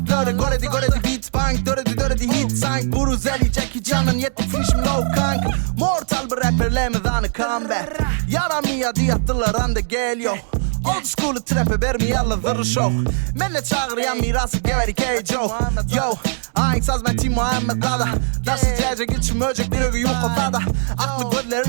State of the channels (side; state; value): left; silent; digital silence